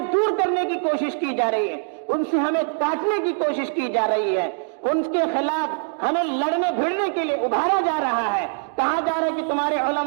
دور کرنے کی کوشش کی جا رہی ہے، ان سے ہمیں کاٹنے کی کوشش کی جا رہی ہے، ان کے خلاف ہمیں لڑنے بھیڑنے کے لیے ابھارا جا رہا ہے، کہا جا رہا ہے کہ تمہارے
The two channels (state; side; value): silent; left; 64 dB below the other